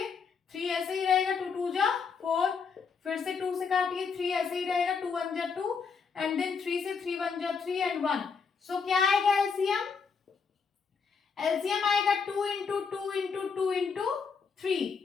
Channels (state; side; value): quieter; right; 5.6 dB